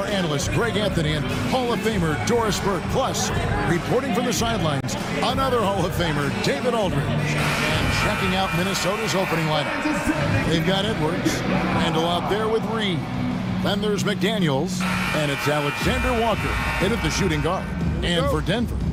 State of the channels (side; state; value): both; identical; correlation 1.00